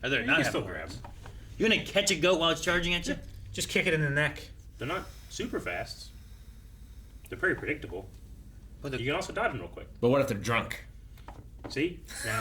Or they're You not can having still grab horns. them. You're gonna catch a goat while it's charging at you? Just kick it in the neck. They're not super fast. They're pretty predictable. But the- You can also dodge them real quick. But what if they're drunk? See?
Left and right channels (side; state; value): both; identical; correlation 1.00